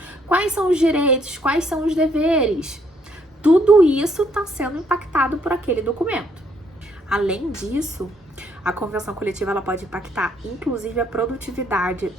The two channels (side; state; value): both; normal; correlation 0.69